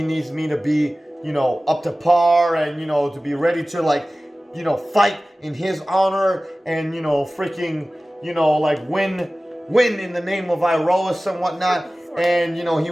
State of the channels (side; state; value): both; normal; correlation 0.97